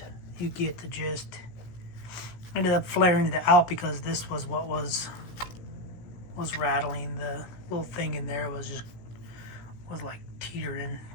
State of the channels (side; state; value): right; late; 17 ms